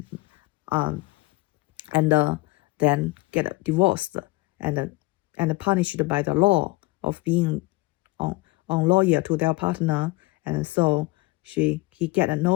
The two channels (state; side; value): quieter; right; 21.9 dB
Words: and then get divorced, and punished by the law of being on lawyer to their partner, and so he get